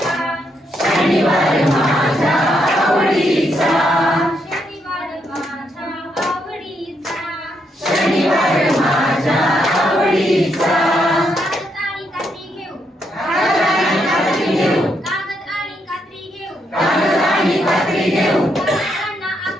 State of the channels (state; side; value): normal; both; correlation 0.78